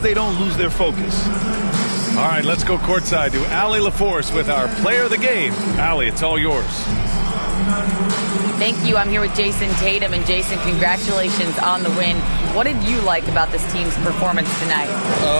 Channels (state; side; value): inverted; both; correlation -1.00